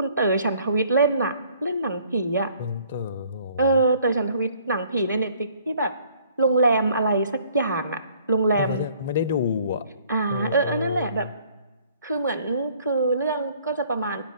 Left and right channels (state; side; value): inverted; both; correlation -0.59